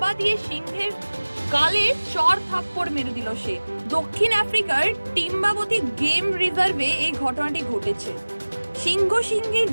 দিয়ে সিংহের গালে চড় থাপ্পড় মেরে দিল সে। দক্ষিণ আফ্রিকার টিম্বাবতী গেম রিজার্ভে এই ঘটনাটি ঘটেছে। সিংহের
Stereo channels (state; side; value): inverted; both; correlation -1.00